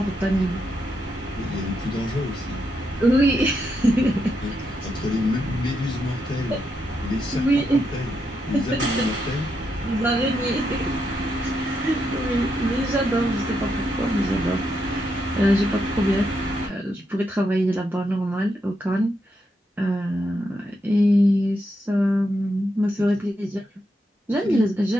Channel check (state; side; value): normal; both; correlation 0.82